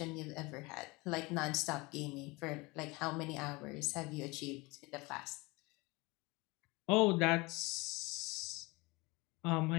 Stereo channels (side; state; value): right; quieter; 24.2 dB